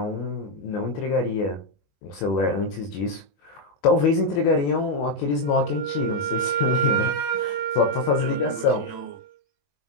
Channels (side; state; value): right; late; 21 ms